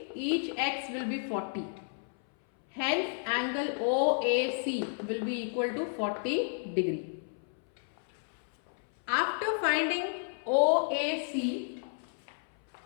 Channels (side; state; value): right; silent; 57 dB below the other